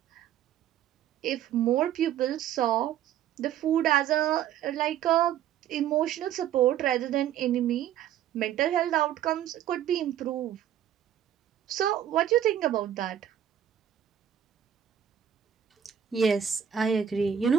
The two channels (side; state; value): left; quieter; 10.2 dB